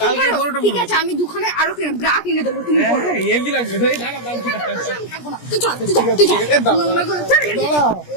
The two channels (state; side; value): late; right; 17 ms